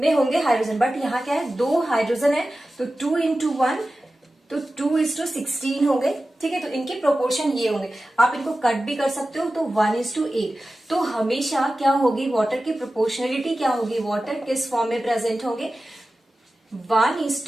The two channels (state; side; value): normal; both; correlation 0.95